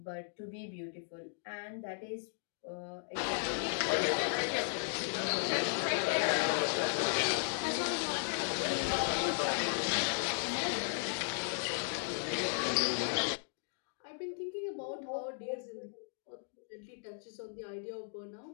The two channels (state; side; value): silent; right; digital silence